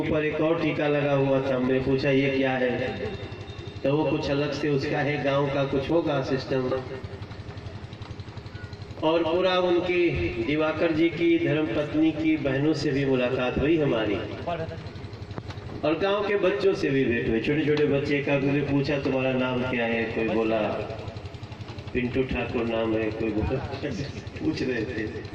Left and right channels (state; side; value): identical; both; correlation 1.00